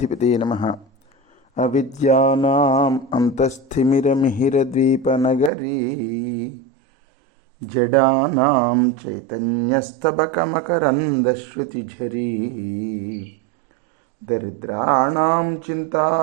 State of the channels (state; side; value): drops out; left; at 5.5 s